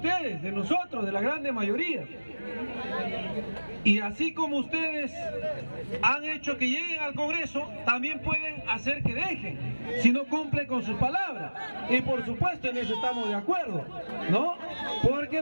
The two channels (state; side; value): inverted; both; correlation -1.00